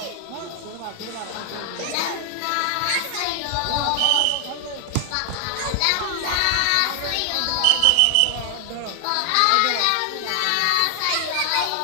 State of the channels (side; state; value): both; different; correlation 0.00